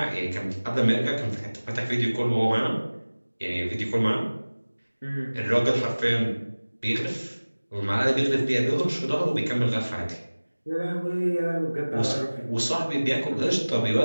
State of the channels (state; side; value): inverted; both; correlation -1.00